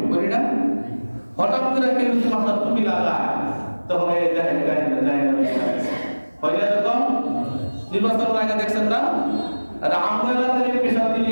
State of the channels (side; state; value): both; inverted; correlation -1.00